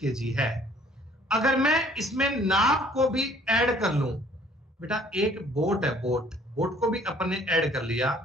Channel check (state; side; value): normal; both; correlation 0.57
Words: है। अगर मैं इसमें नाव को भी ऐड कर लूं बेटा, एक बोट है, बोट को भी अपन ने ऐड कर लिया,